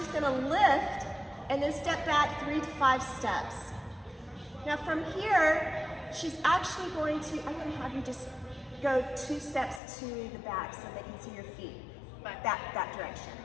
going to lift and then step back 3 to 5 steps. Now from here, she's actually going to, I'm going to have you just go 2 steps to the back so they can see your feet. That direction.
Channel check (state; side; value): drops out; right; at 9.8 s